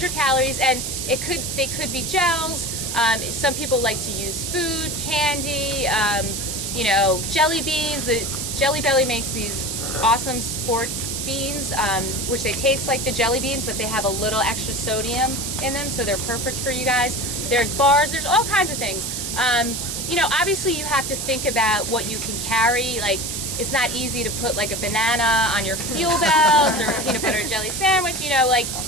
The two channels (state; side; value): noise; right; hiss, 4 dB below the sound